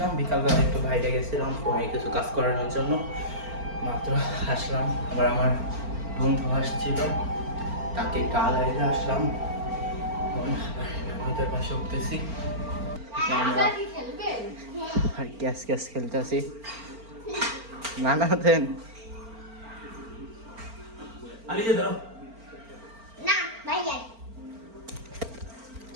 বিকালবেলা একটু বাইরে গেছিলাম ফোনে কিছু কাজ করানোর জন্য। মাত্র আসলাম, আবার আমার বন্ধু আসছিল, তাকে একটু আলাইতে আসলাম। আমাদের পাশে উঠতেছি, আমরা আর ক্যাশ খেলতেছি। না দেন আরে যে দাও না ভাইয়া।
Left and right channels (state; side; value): late; left; 4.4 ms